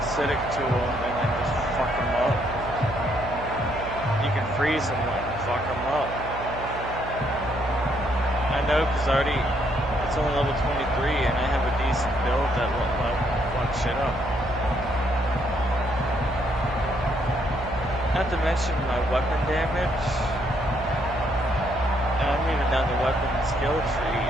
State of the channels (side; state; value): right; noise; hum, 11 dB below the sound